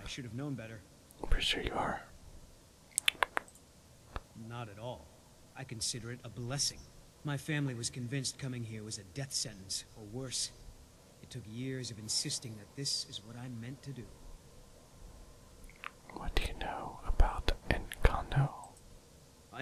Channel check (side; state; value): both; identical; correlation 1.00